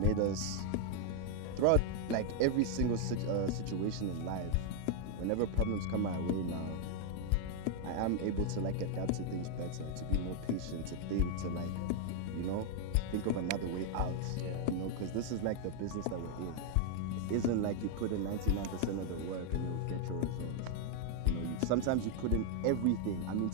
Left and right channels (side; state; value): both; different; correlation 0.00